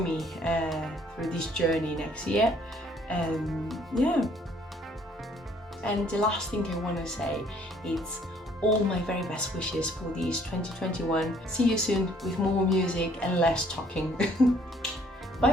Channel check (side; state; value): both; normal; correlation 0.62